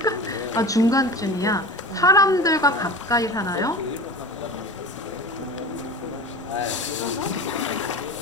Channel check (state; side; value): normal; both; correlation 0.33